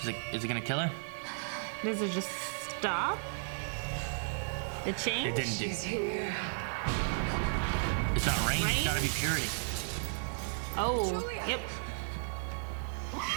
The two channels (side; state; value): left; silent; digital silence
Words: Is it gonna kill her? Does it just stop? The change? It didn't do. She's here. It's not rain. It's gotta be purity. Oh. Julia. Yep.